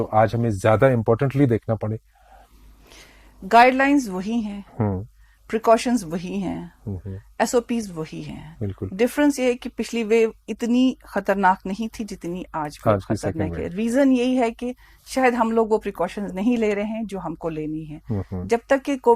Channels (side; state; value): both; identical; correlation 1.00